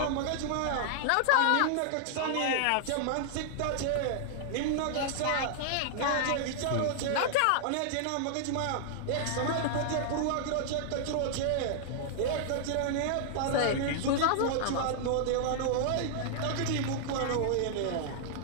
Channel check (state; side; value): different; both; correlation 0.00